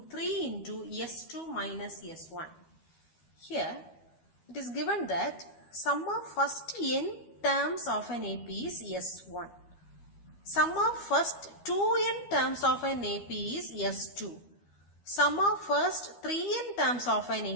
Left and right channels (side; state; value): right; late; 12 ms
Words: 3 into S2 minus S1. Here it is given that sum of first n terms of an AP is S1. Sum of first 2n terms of an AP is S2. Sum of first 3n terms of an